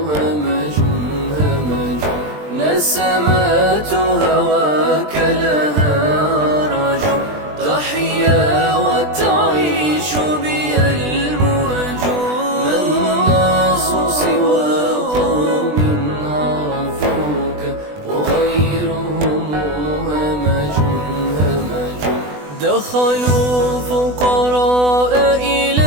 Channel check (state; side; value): late; left; 20 ms